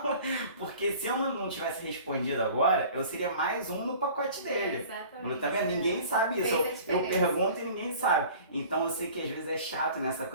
Porque se eu não tivesse respondido agora, eu seria mais um no pacote dele. Exatamente. Tá vendo? Ninguém sabe isso. Eu pergunto e ninguém sabe. Então eu sei que às vezes é chato nessa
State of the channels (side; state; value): both; inverted; correlation -0.45